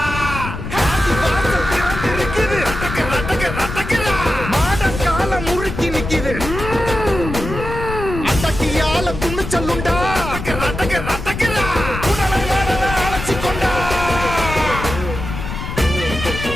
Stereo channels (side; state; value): left; noise; rumble, 7 dB below the sound